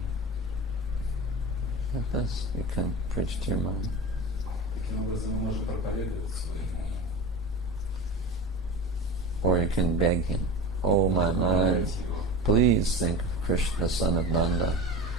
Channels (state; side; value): normal; both; correlation 0.30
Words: Like this, you can preach to your mind. Таким образом мы можем проповедовать своему уму. Or you can beg him, oh my mind, Помогать его. please think of Krishna, the son of Nanda.